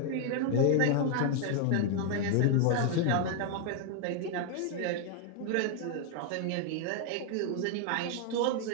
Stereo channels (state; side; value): different; both; correlation 0.00